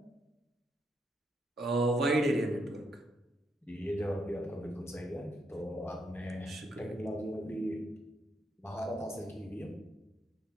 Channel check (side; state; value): both; normal; correlation 0.77